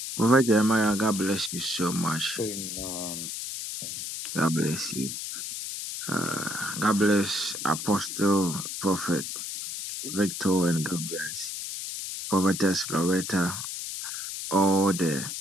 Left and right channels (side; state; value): left; noise; hiss, 6 dB below the sound